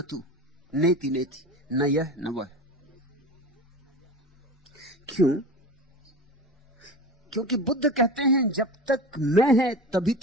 तू, नेति नेति, न यह न वह। क्यों? क्योंकि बुद्ध कहते हैं जब तक मैं है तभी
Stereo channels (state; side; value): normal; both; correlation 0.31